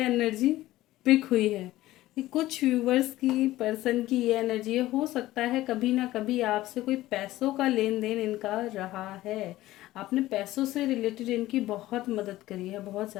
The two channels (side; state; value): right; quieter; 16.1 dB